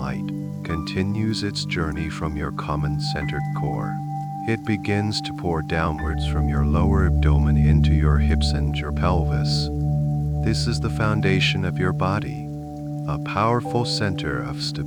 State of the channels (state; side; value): identical; both; correlation 1.00